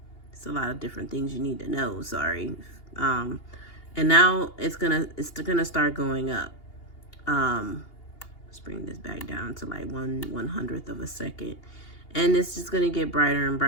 It's a lot of different things you need to know, sorry. And now it's gonna start going up. Let's bring this back down to like 1/100th of a second. And it's just gonna get brighter and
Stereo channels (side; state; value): right; late; 2.8 ms